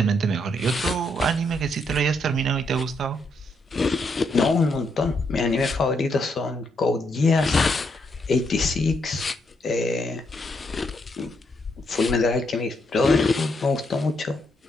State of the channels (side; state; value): both; normal; correlation 0.77